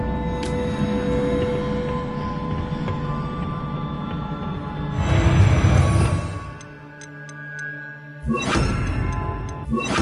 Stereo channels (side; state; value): both; identical; correlation 1.00